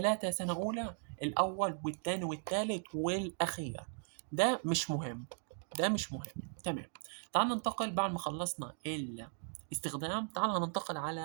سنة اولى، الاول والتاني والتالت والاخير، ده مش مهم. ده مش مهم. تمام. تعال ننتقل بعد ما خلصنا الاستخدام، تعال هننتقل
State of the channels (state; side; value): silent; left; 53 dB below the other